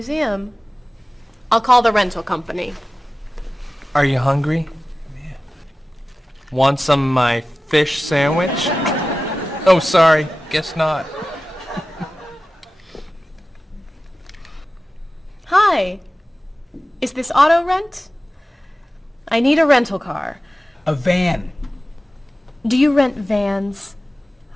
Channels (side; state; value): both; normal; correlation 0.96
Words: I'll call the rental company. Are you hungry? Yeah. Want some of my fish sandwich? Oh, sorry. Guess not. Hi. Is this auto rent? I need a rental car. A van. Do you rent vans?